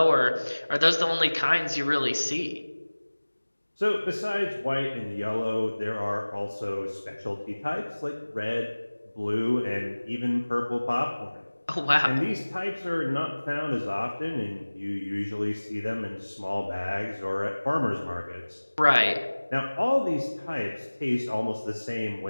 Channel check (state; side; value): inverted; both; correlation -1.00